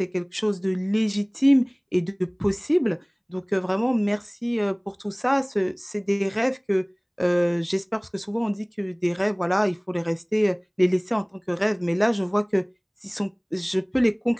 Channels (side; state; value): both; identical; correlation 1.00